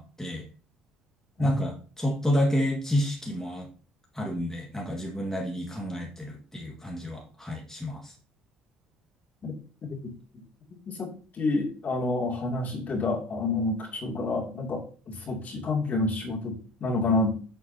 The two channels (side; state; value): both; normal; correlation 0.60